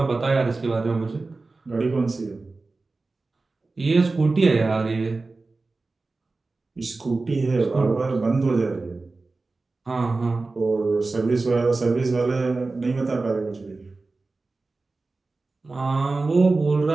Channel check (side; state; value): left; quieter; 3.6 dB